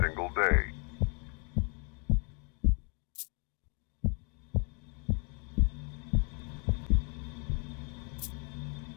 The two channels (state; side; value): quieter; right; 35.5 dB